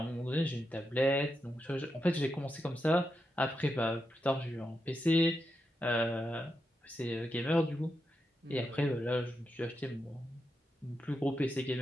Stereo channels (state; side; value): normal; both; correlation 0.86